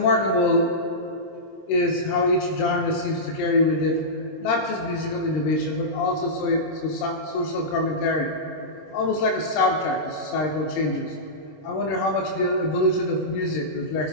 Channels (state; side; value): late; right; 26 ms